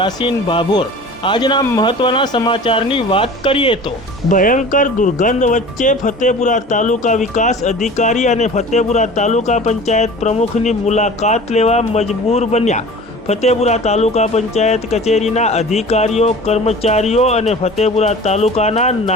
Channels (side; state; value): both; normal; correlation 0.40